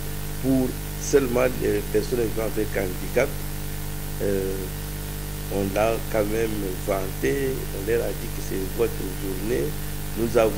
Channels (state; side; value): noise; right; hum, 28 dB below the sound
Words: pour seulement les personnes vivant avec handicap. On l'a quand même vanté, on leur a dit que c'est votre journée. Nous